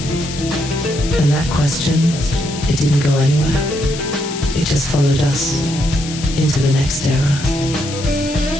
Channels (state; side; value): noise; left; hiss, 11 dB below the sound